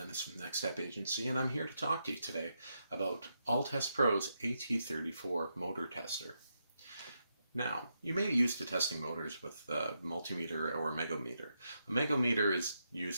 from Next Step Agency, and I'm here to talk to you today about Alltest Pro's AT34 motor tester. Now, you may be used to testing motors with a multimeter or a megometer. A megometer is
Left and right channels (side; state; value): both; inverted; correlation -0.83